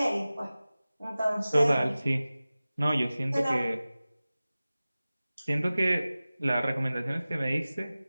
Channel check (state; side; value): inverted; both; correlation -0.97